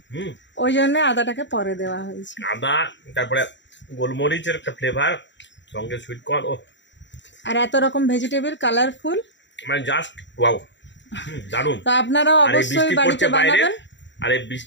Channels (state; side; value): late; right; 0.53 ms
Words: ওই জন্য আদাটাকে পরে দেওয়া হয়েছে। আদা, তারপরে গোলমরিচের একটা ফ্লেভার, সঙ্গে সুইট কর্ন, ও আর এত রকম ভেজিটেবল কালারফুল, মানে জাস্ট ওয়াও, দারুণ। তো আপনারাও আর এই অবশ্যই বৃষ্টি বাড়িতে পড়ছে বাইরে, বানাবেন। আর এই